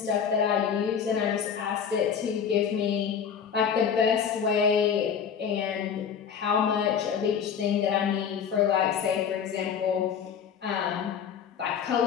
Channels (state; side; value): quieter; right; 7.4 dB